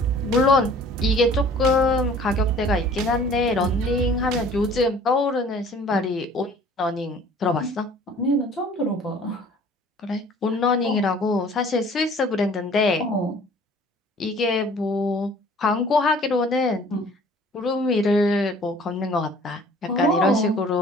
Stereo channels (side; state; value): both; normal; correlation 0.51